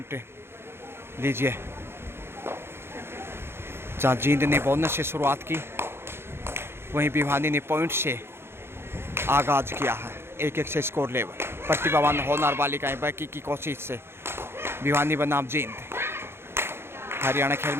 लीजिए, जहाँ जींद ने बोनस से शुरुआत की, वहीं भिवानी ने पॉइंट से आगाज़ किया है। 1-1 से स्कोर लेवल। प्रतिभावान होनहार बालिकाएं बाकी की कोशिश से भिवानी बनाम जींद। हरियाणा खेल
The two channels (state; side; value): late; left; 0.12 ms